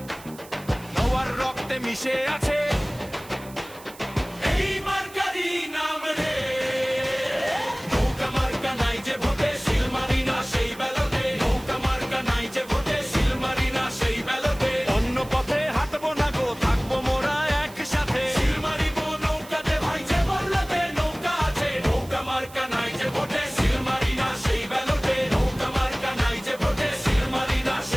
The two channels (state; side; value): noise; right; hiss, 20 dB below the sound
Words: নওয়ার রক্তে মিশে আছে এই মার্কারি নাম রে। নৌকা মার্কা নাই যে ভোটে, সিল মারি না সেই ব্যালটে। নৌকা মার্কা নাই যে ভোটে, সিল মারি না সেই ব্যালটে। অন্য পথে হাঁটবো না গো, থাকবো মোরা একসাথে। সিল মারিব নৌকাতে ভাই যে বলতে নৌকা আছে। নৌকা মার্কা নাই যে ভোটে, সিল মারি না সেই ব্যালটে। নৌকা মার্কা নাই যে ভোটে, সিল মারি না